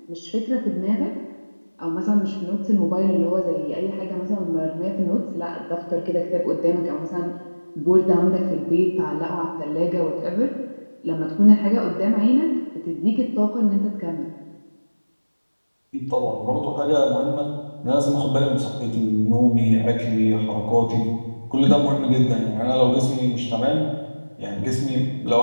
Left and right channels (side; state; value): both; inverted; correlation -1.00